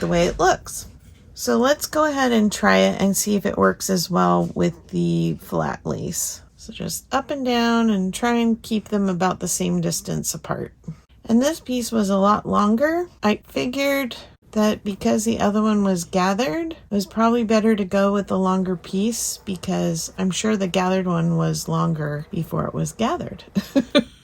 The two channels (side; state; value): both; identical; correlation 1.00